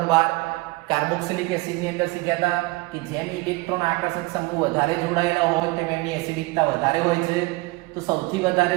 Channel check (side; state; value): left; quieter; 23.3 dB